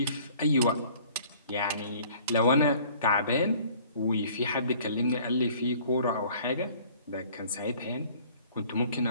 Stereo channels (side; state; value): both; inverted; correlation -0.53